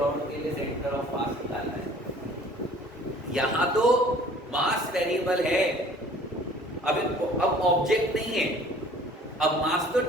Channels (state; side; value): normal; both; correlation 0.51